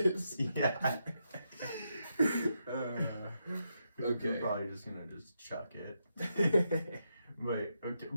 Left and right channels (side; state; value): both; inverted; correlation -0.83